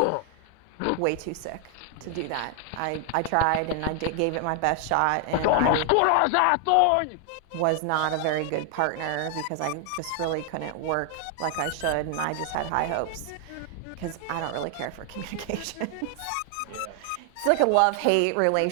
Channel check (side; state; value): both; different; correlation 0.00